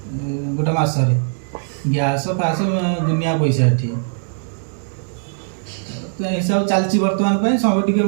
गोटा मास रे गैस फास दुनिया पैसा एठी तो हिसाब चलची वर्तमान पे सब टिके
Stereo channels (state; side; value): silent; left; digital silence